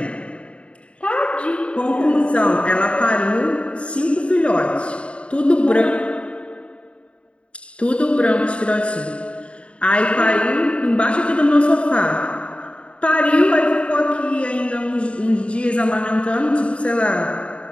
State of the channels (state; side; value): late; right; 0.059 ms